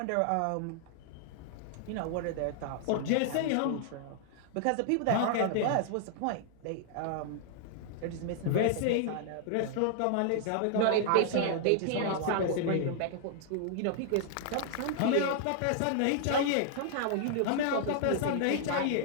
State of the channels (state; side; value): different; both; correlation -0.01